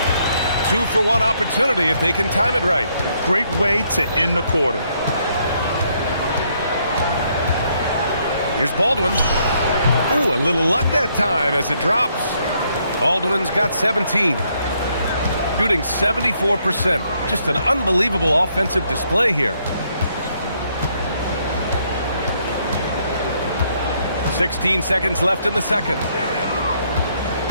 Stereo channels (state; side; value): inverted; both; correlation -0.72